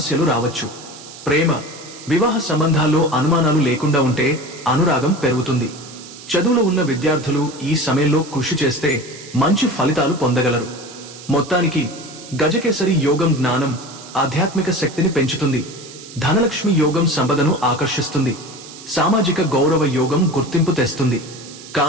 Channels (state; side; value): noise; right; hiss, 17 dB below the sound